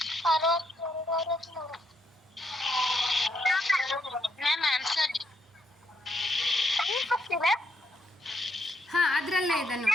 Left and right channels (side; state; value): both; normal; correlation 0.75